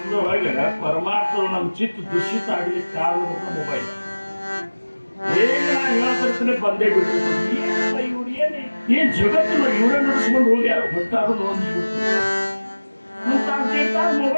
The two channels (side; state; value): both; inverted; correlation -1.00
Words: ಪರಮಾರ್ಥದ ನಮ್ಮ ಚಿತ್ತ ದುಷಿತ ಆಗ್ಲಿಕ್ಕೆ ಕಾರಣ ಮೊಬೈಲ್. ಹೇಳ್ತಿರ್ತಾನೆ ಬಂದೇ ಬಿಟ್ಟು ಇವ್ರು ಏನ್ ಜಗತ್ತಿನ ಇವರೇ ನಡೆಸ್ಕೊಂಡು ಹೋಗಿ ಯಾರು ಹೊಟ್ಟಾರು ನೋಡ್ಬಿಟ್ಟು